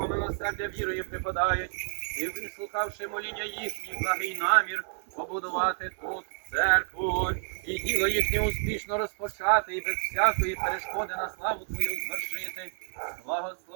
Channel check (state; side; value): silent; left; digital silence